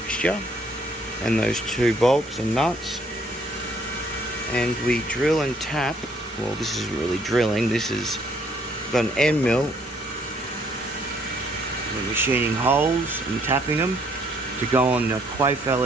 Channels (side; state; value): both; normal; correlation 0.66